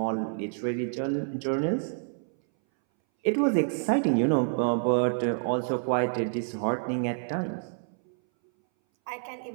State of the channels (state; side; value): silent; left; 59 dB below the other